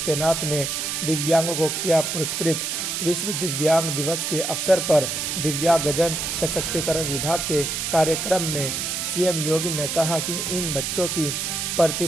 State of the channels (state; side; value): noise; right; hiss, 2 dB below the sound